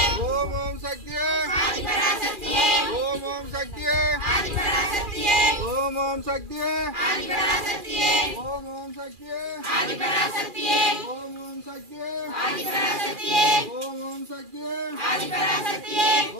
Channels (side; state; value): left; late; 2.4 ms